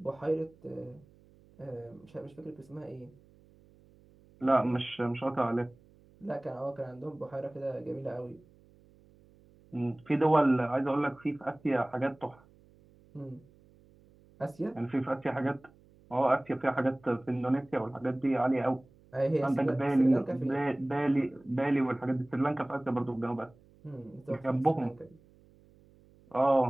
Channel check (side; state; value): right; noise; hum, 28 dB below the sound